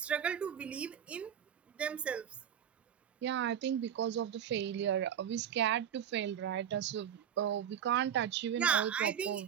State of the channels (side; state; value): left; quieter; 9.0 dB